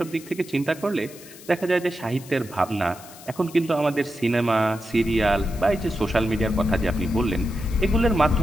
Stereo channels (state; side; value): noise; left; hiss, 19 dB below the sound